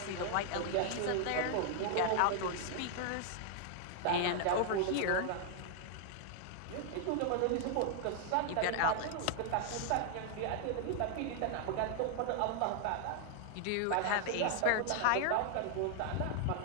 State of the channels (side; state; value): both; different; correlation 0.00